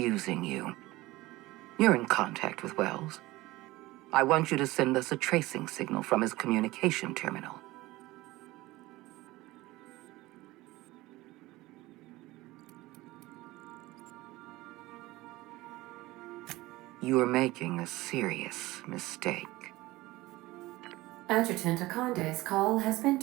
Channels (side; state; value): left; quieter; 19.1 dB